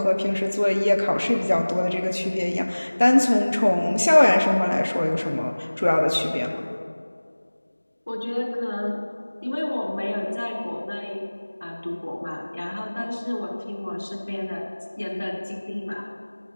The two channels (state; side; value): inverted; both; correlation -1.00